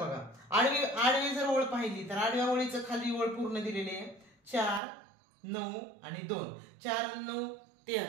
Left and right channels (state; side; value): drops out; left; at 4.8 s